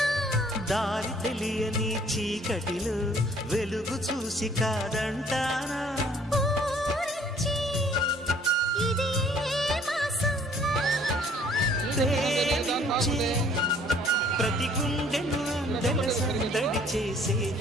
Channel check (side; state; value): both; normal; correlation 0.58